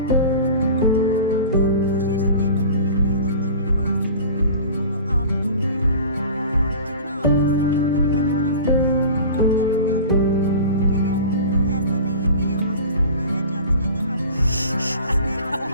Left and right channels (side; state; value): both; inverted; correlation -0.38